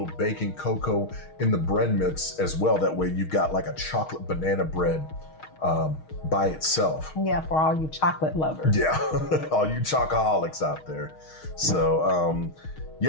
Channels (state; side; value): late; right; 6.4 ms